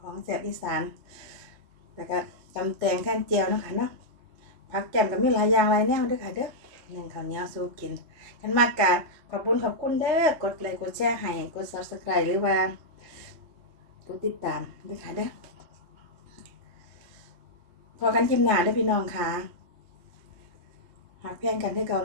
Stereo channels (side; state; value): left; late; 3.2 ms